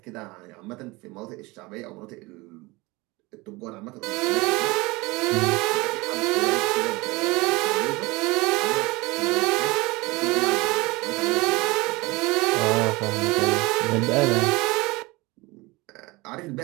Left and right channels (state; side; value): quieter; left; 23.2 dB